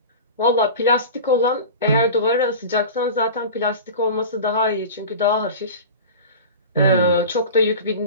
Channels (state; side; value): inverted; both; correlation -0.33